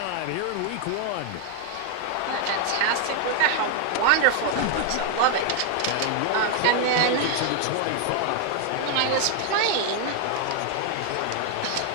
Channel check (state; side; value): different; both; correlation 0.01